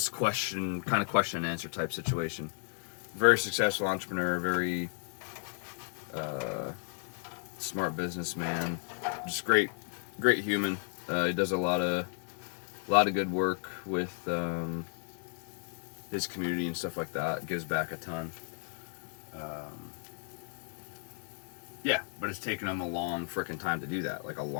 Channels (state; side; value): silent; right; 55 dB below the other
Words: question and answer type situation. Very successful entrepreneur, very smart businessman, just great human. He does a lot of good work with his community and stuff like that. Gives back a ton. Yeah, but it's taken him a long frickin' time to do that, like a